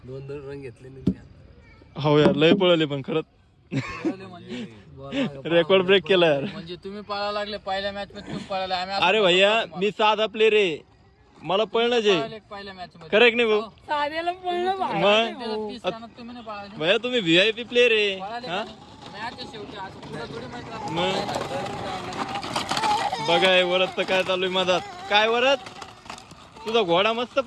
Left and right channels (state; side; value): identical; both; correlation 1.00